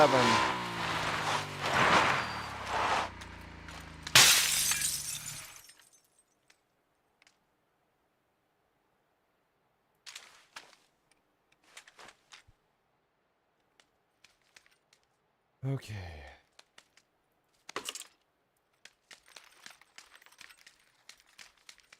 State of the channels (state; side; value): identical; both; correlation 1.00